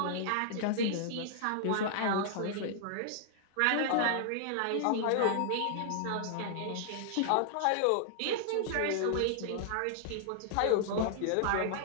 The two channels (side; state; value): both; different; correlation -0.01